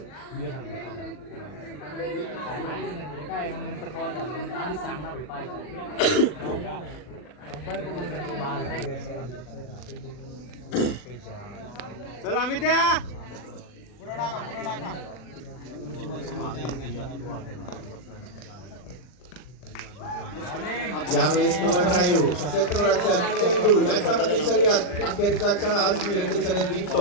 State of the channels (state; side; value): late; right; 40 ms